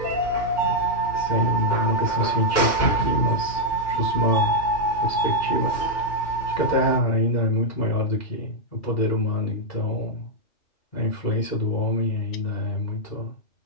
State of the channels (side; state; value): right; late; 2.2 ms